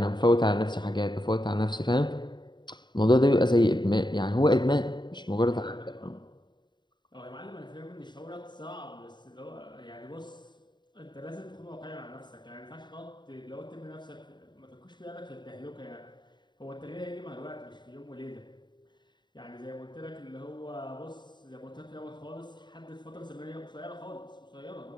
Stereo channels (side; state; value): right; late; 0.22 ms